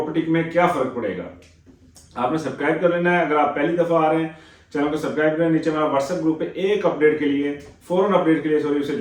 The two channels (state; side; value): identical; both; correlation 1.00